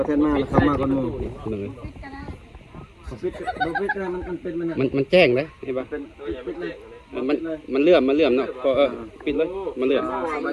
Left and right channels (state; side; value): identical; both; correlation 1.00